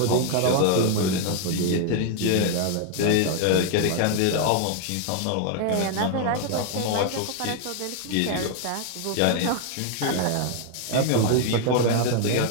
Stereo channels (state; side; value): different; both; correlation 0.00